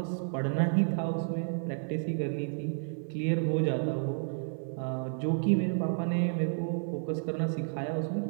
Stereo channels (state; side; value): silent; left; 57 dB below the other